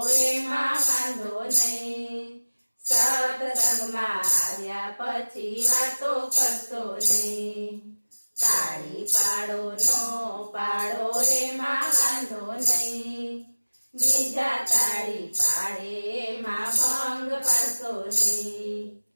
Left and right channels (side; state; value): both; inverted; correlation -1.00